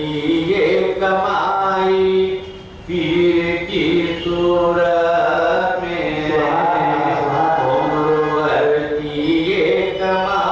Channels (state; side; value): identical; both; correlation 1.00